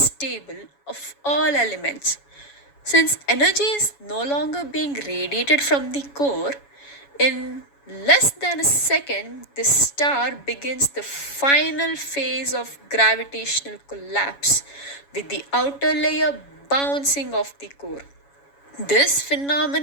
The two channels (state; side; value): late; right; 7.1 ms